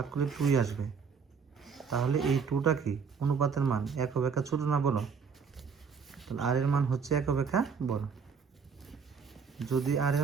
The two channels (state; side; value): quieter; left; 6.0 dB